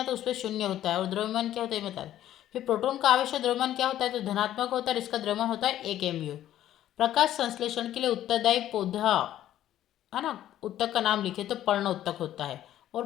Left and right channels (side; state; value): right; quieter; 12.4 dB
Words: तो उस पर शून्य होता है, और द्रव्यमान क्या होता है बता दें। फिर प्रोटॉन का आवेश और द्रव्यमान क्या होता है, तो धनात्मक होता है, इसका द्रव्यमान होता है 1 mu। प्रकाश संश्लेषण के लिए उत्तरदायी पौधा है ना, उत्तक का नाम लिखे तो पर्ण उत्तक होता है।